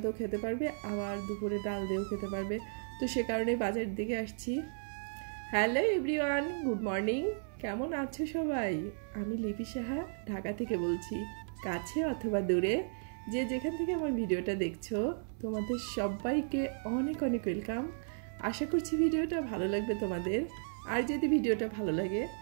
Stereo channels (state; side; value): silent; left; 55 dB below the other